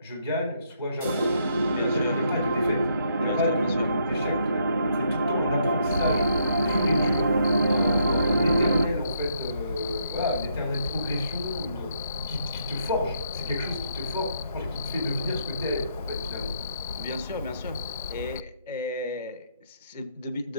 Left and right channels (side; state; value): both; inverted; correlation -0.73